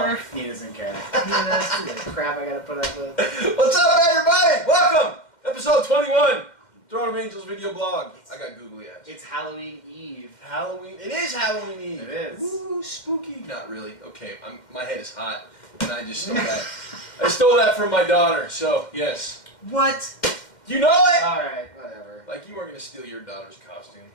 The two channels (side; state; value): right; late; 2.1 ms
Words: He doesn't care. That's the crap I gotta put up with. What's up, everybody? Welcome! Episode 21. Throne of Angels video blog. I got googly eyes. It's Halloween Eve. Halloween. It is Halloween Eve. It is. Ooh, spooky. Not really. Okay, my head is hot, and I just stole that. I stole that from my daughter. So yes. What? You know it. All right, whatever. Like you weren't gonna steal your daughter's costume.